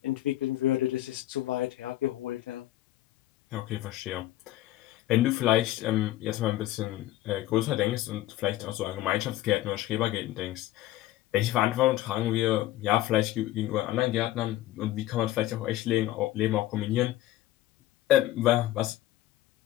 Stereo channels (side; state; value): right; quieter; 14.9 dB